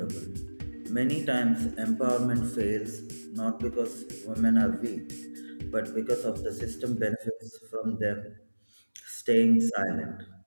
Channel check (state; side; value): inverted; both; correlation -1.00